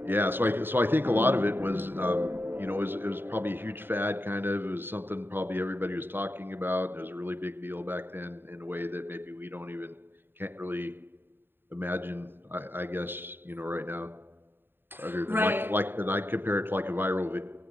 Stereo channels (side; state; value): left; late; 0.098 ms